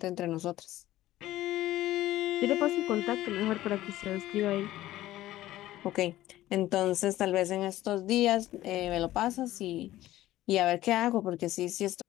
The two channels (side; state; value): right; quieter; 15.1 dB